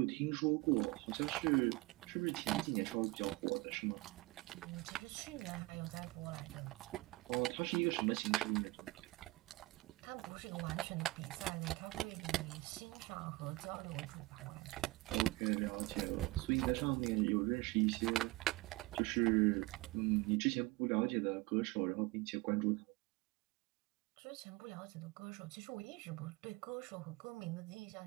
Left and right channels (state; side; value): quieter; left; 21.0 dB